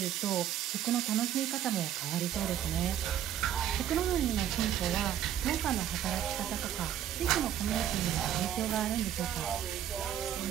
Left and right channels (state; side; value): quieter; left; 10.7 dB